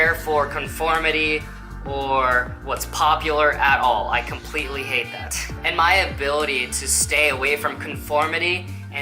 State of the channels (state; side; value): identical; both; correlation 1.00